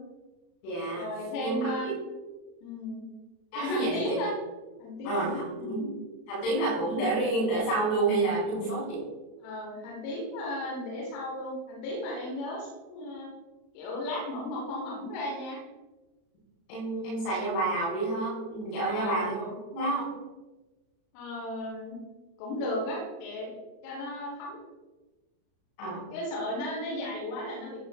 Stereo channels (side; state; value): right; late; 36 ms